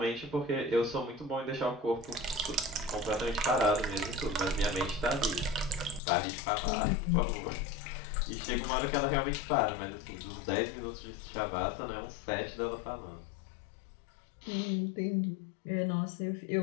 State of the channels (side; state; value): right; drops out; at 6.0 s